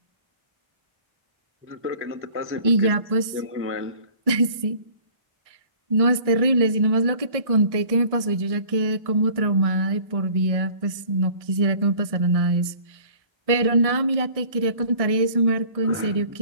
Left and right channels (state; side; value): late; left; 1.6 ms